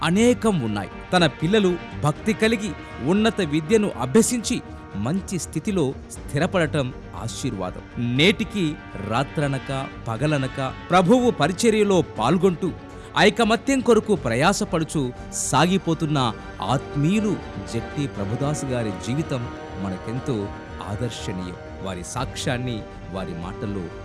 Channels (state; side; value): identical; both; correlation 1.00